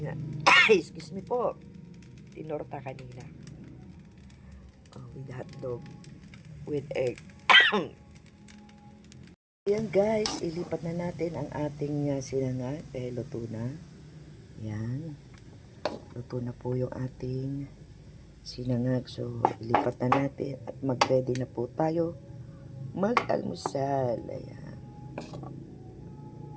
excuse me po, tinorta kanina. With hotdog. With egg. Yan, guys, ilipat na natin ang ating sinangag. Luto na. Yan. Luto na po yung ating sinangag. So, ilipat na natin at mag-ready na po tayo mag-almusal. Ayan.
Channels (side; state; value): both; identical; correlation 1.00